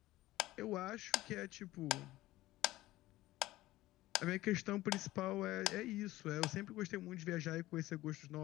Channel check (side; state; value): right; quieter; 16.9 dB